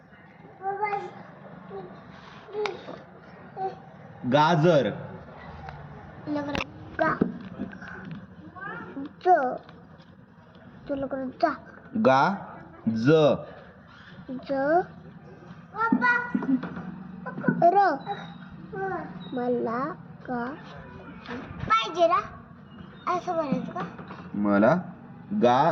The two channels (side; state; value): both; identical; correlation 1.00